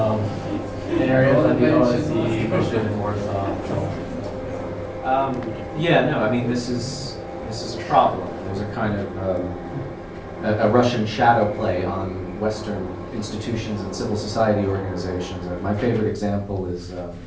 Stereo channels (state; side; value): identical; both; correlation 1.00